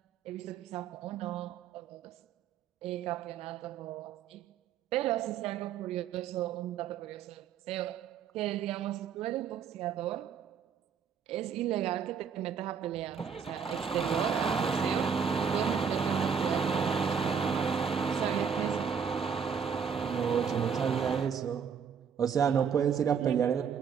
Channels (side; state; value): left; quieter; 7.0 dB